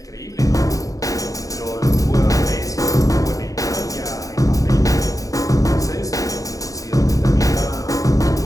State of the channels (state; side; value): late; right; 0.16 ms